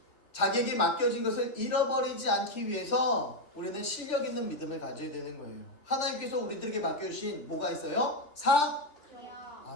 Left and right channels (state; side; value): late; right; 3.4 ms